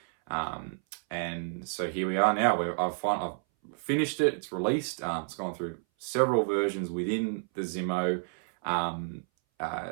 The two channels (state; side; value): silent; left; 58 dB below the other